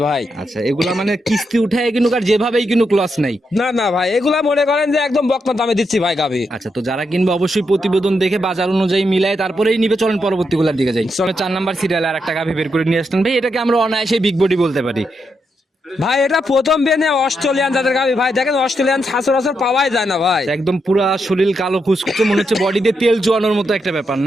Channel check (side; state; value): both; normal; correlation 0.82